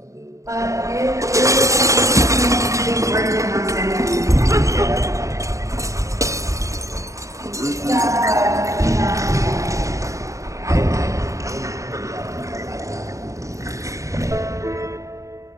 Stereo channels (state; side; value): late; left; 0.15 ms